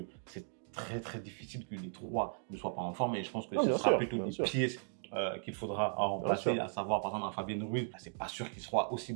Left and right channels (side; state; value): left; silent; digital silence